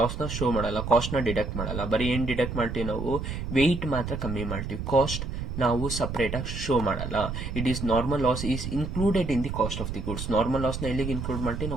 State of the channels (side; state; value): right; noise; rumble, 5 dB below the sound